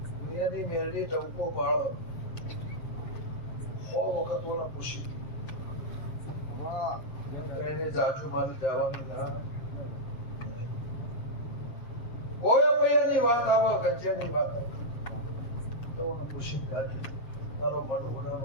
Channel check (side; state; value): right; late; 7.2 ms